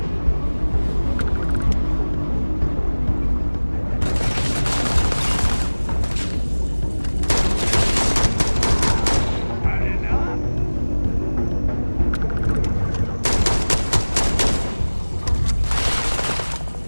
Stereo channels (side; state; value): both; inverted; correlation -1.00